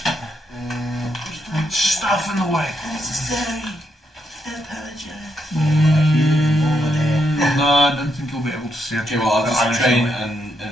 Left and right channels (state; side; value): normal; both; correlation 0.79